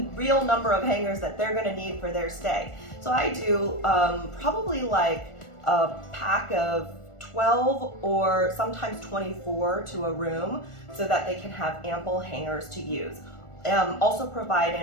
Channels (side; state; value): right; late; 1.4 ms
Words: real number of hangers that they're going to need for their stay. So I do probably like a pack of 12 or sometimes 24 to a room so that they can have ample hangers to use. Also provide